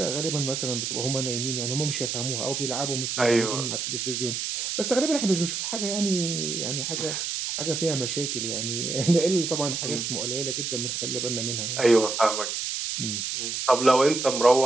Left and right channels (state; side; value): noise; right; hiss, 3 dB below the sound